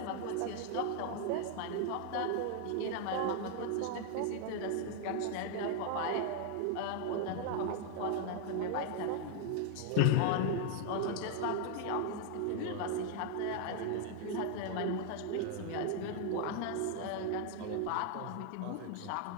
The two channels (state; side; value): different; both; correlation 0.00